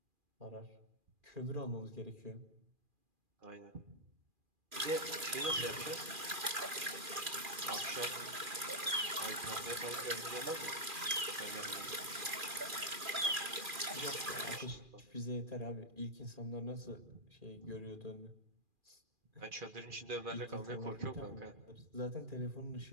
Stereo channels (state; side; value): late; left; 2.4 ms